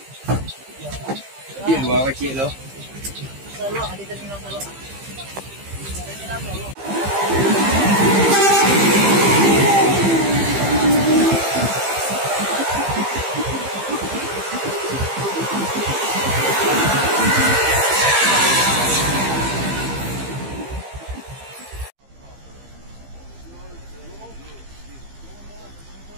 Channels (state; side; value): late; left; 15 ms